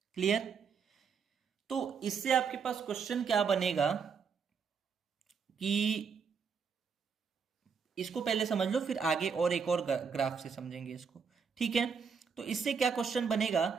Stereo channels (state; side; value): quieter; left; 6.1 dB